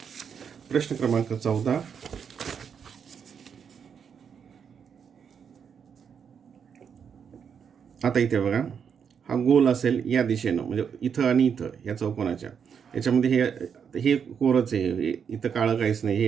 प्रश्न क्रमांक 14. आता इथे बघा, हा गोल असेल या दिशेनं, म्हणजे इथं आणि इथं या चौकोनाच्या याच्यामध्ये हे कोरच आहे, इथं काळं काहीच नाही, हे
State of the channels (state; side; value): quieter; left; 7.1 dB